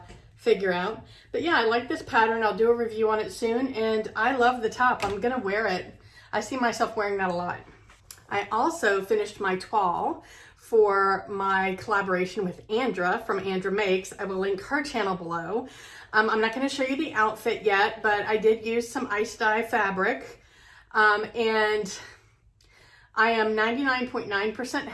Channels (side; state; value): both; identical; correlation 1.00